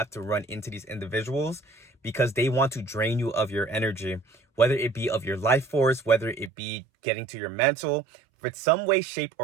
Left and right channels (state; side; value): drops out; left; at 6.5 s